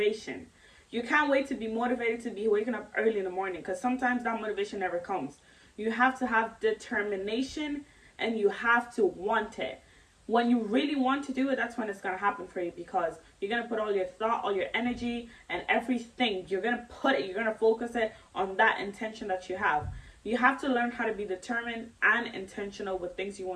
You can't wait to be motivated to be waking up early in the morning, because sometimes that motivation never comes. You have to have determination, and you have to want it. When you really want to do it, that's when it's going to happen for you, because you're going to put all your thought, all your energy, and everything. You're going to focus it on that intention that you have. You have to learn how to be determined and intentional with things you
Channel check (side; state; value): both; identical; correlation 1.00